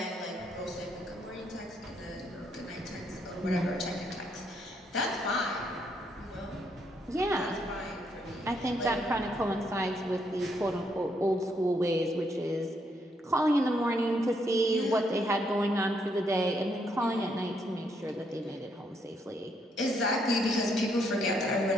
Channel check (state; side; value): normal; both; correlation 0.74